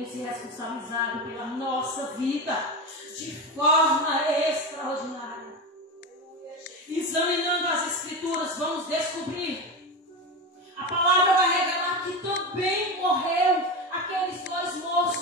se responsabilizado pela nossa vida de forma extraordinária. Examinando as Escrituras, vamos descobrir. A palavra vai revelar que também morreu aqueles dois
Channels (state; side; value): normal; both; correlation 0.20